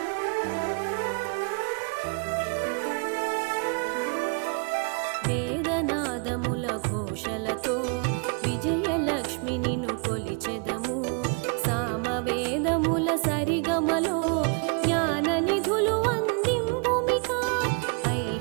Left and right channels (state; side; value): quieter; left; 35.8 dB